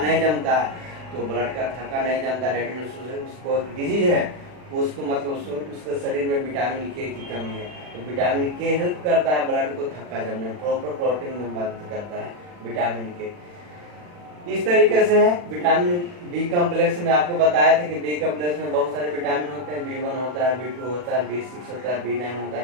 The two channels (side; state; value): left; late; 40 ms